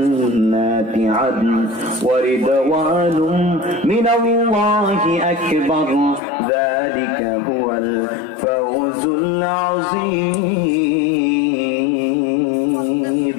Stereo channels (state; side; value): drops out; right; at 6.2 s